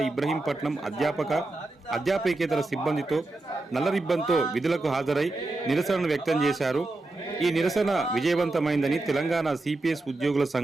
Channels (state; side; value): quieter; left; 3.0 dB